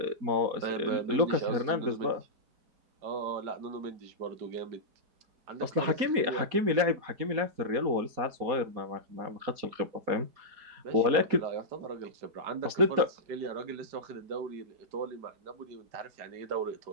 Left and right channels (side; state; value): left; late; 4.2 ms